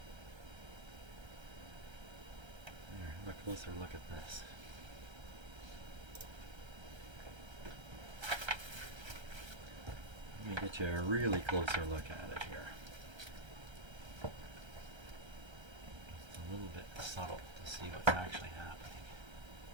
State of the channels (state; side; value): late; left; 1.3 ms